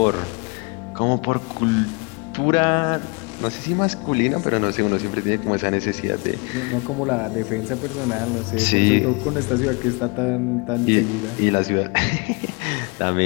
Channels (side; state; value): right; quieter; 30.7 dB